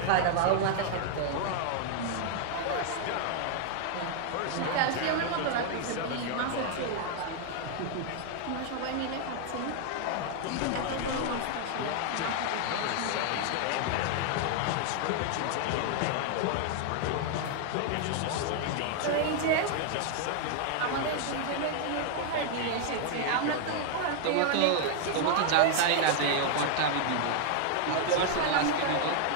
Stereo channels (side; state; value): both; different; correlation 0.00